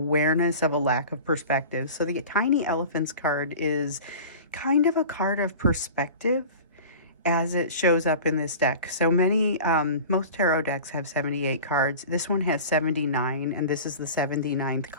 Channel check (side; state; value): both; inverted; correlation -0.38